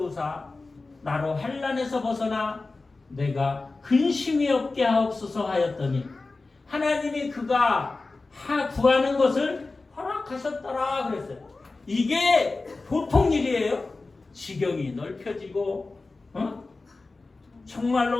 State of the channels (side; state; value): right; quieter; 3.6 dB